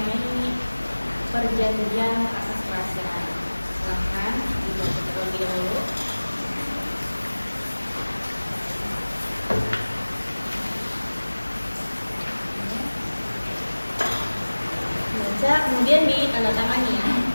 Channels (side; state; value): both; inverted; correlation -1.00